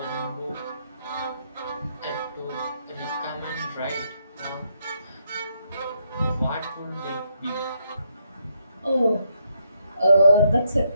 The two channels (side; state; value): both; inverted; correlation -0.76